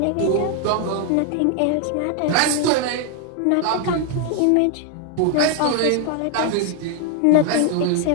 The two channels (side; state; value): both; different; correlation 0.00